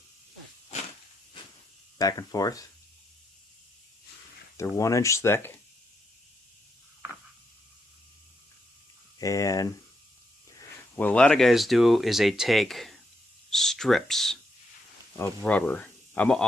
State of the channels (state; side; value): normal; both; correlation 0.80